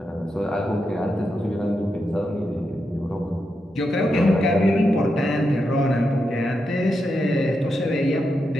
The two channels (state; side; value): normal; both; correlation 0.86